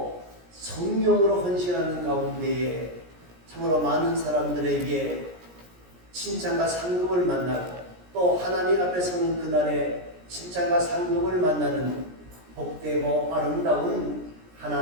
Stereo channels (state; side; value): late; left; 17 ms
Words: 성령으로 헌신하는 가운데에 참으로 많은 사람들에게 칭찬과 상급을 만나고 또 하나님 앞에 서는 그날에 칭찬과 상급을 만나는 복되고 아름다운